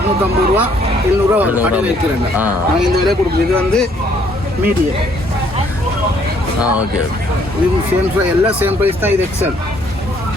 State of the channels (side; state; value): both; normal; correlation 0.65